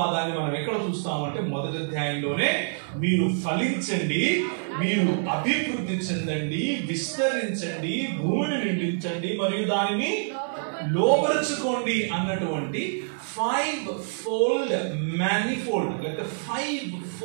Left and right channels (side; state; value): left; silent; digital silence